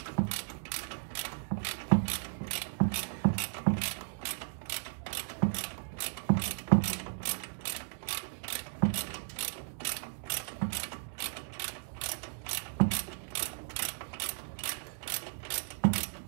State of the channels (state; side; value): silent; left; digital silence